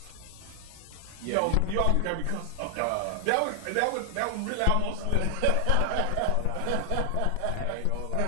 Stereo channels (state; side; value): different; both; correlation 0.00